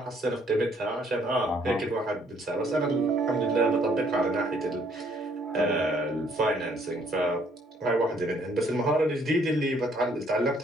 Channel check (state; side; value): normal; both; correlation 0.65